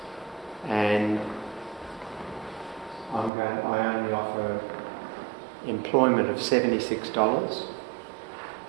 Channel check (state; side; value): drops out; left; at 3.3 s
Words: and I only offer employment of $76,